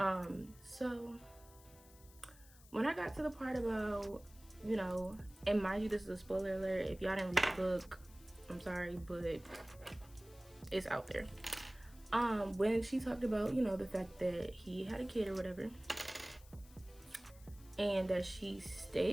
So when I got to the part about, you know, and mind you, this is a spoiler alert, if y'all didn't read the book, I'm sorry, but it's out there. When she talked about, you know, the fact that he had a kid or whatever, and that she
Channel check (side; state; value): left; noise; hiss, 23 dB below the sound